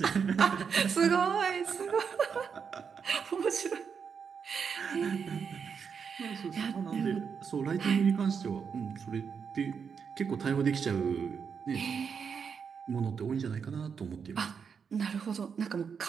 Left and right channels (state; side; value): quieter; left; 6.5 dB